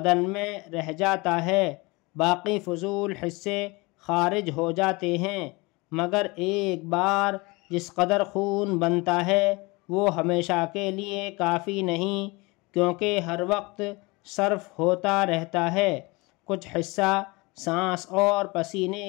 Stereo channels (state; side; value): quieter; right; 25.1 dB